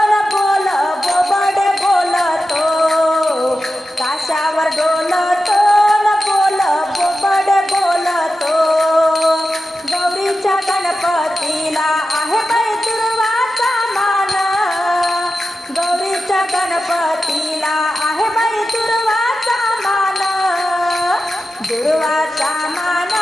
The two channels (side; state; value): both; normal; correlation 0.92